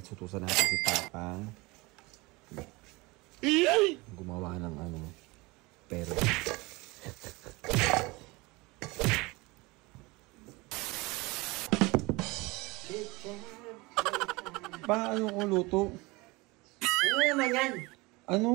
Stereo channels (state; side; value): quieter; left; 23.8 dB